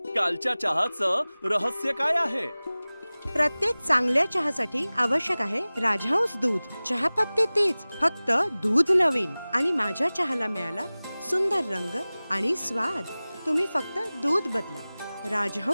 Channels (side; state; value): both; inverted; correlation -0.99